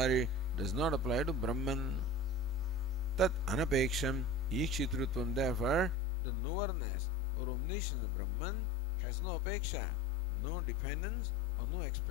does not apply to Brahman. Tat anapeksham ikshitrutvam. Therefore, the knowerness or omniscience of Brahman has no apeksha, no dependence or no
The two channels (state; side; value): drops out; right; at 6.0 s